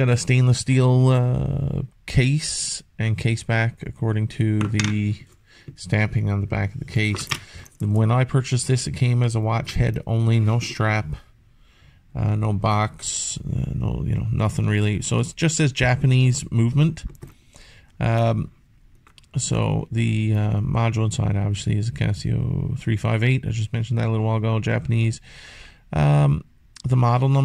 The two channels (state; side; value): identical; both; correlation 1.00